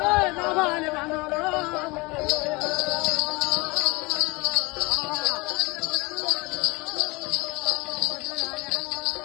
నా బాలి బంధువులు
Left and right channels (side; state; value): right; quieter; 25.0 dB